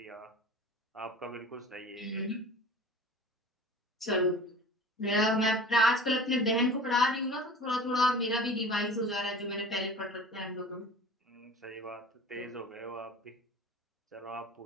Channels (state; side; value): normal; both; correlation 0.40